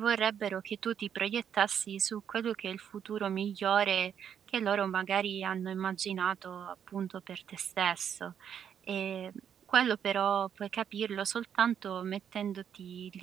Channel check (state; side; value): quieter; left; 8.5 dB